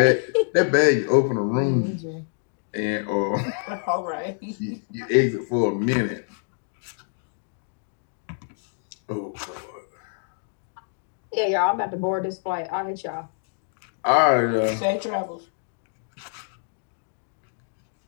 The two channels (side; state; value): right; silent; 61 dB below the other